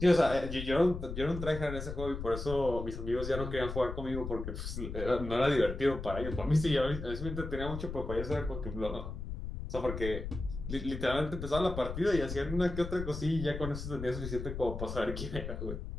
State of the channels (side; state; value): left; noise; rumble, 7 dB below the sound